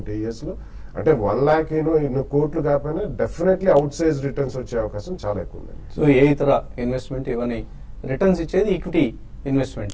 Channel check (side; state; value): both; identical; correlation 1.00